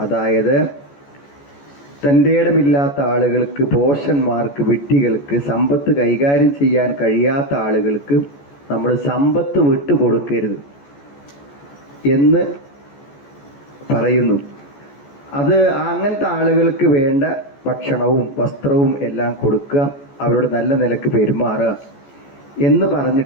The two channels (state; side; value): late; right; 14 ms